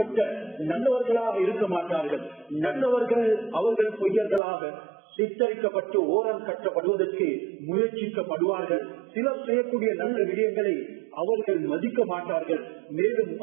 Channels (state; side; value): drops out; left; at 4.4 s